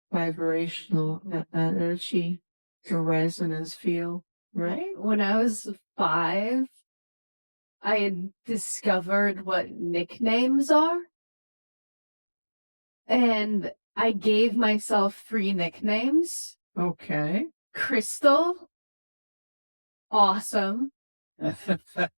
vibrational energy, the resonance field, right? When I was 5, I had discovered what nicknames are. And I gave myself 3 nicknames. Okay. Crystal, awesome,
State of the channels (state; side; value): inverted; both; correlation -1.00